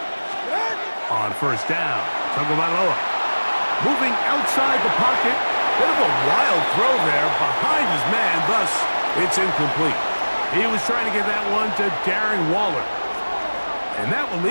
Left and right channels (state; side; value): inverted; both; correlation -1.00